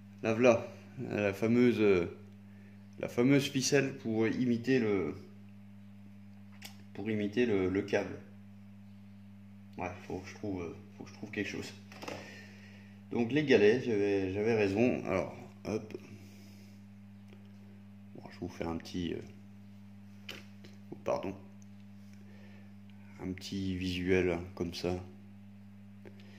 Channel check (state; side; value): identical; both; correlation 1.00